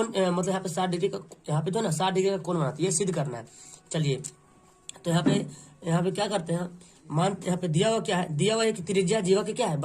मतलब यहाँ पे 60 डिग्री का, यहाँ पे जो ना 60 डिग्री का कोण बनाती है, ये सिद्ध करना है। चलिए, तो यहाँ पे क्या करते हैं, मान यहाँ पे दिया हुआ क्या है, दिया हुआ है कि त्रिज्या जीवा के क्या है,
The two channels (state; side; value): identical; both; correlation 1.00